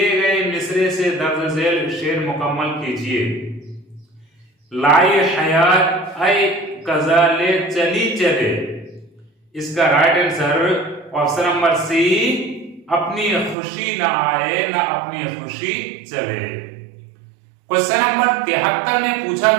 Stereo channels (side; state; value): left; drops out; at 13.6 s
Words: गए मिसरे से दर्ज झेल शेर मुकम्मल कीजिए। लाई हयात ऐ कजाले चली चले। इसका right answer option number C अपनी खुशी न आए न अपनी खुशी चले। क्वेश्चन नंबर 73 में पूछा